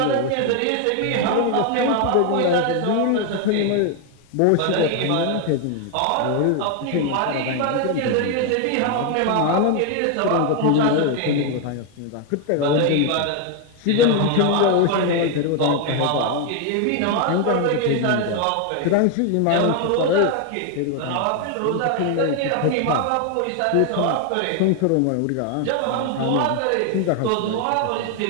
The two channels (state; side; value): different; both; correlation 0.01